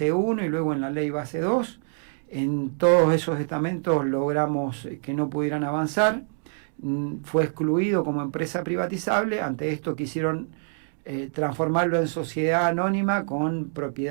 1 y luego en la ley base 2. En todos esos estamentos logramos que no pudieran avanzar. Fue excluido como empresa privatizable. Ante esto quisieron transformarlo en sociedad anónima con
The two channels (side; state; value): left; silent; digital silence